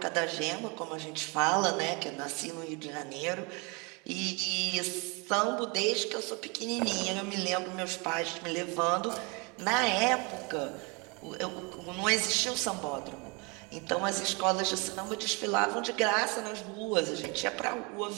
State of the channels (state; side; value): quieter; left; 30.0 dB